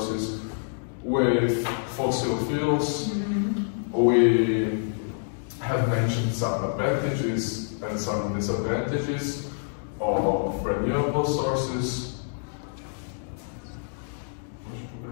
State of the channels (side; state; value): right; silent; digital silence